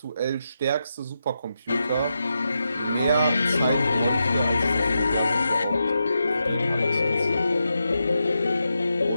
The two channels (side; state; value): both; inverted; correlation -0.86